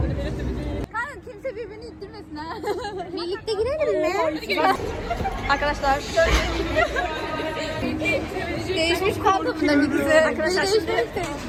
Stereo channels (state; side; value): identical; both; correlation 1.00